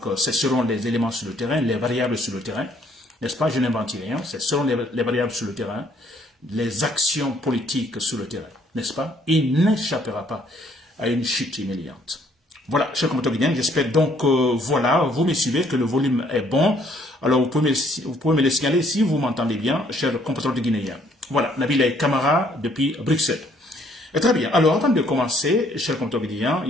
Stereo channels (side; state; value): both; normal; correlation 0.65